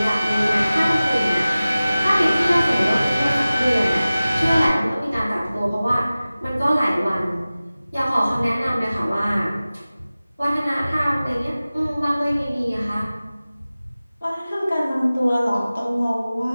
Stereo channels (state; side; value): inverted; both; correlation -0.97